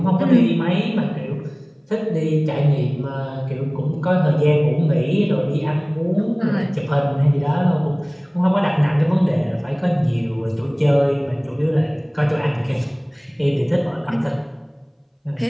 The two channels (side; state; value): both; identical; correlation 1.00